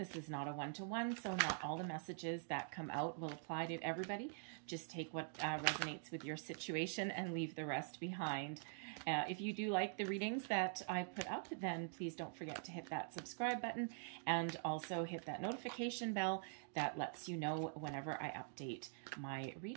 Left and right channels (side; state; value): left; silent; digital silence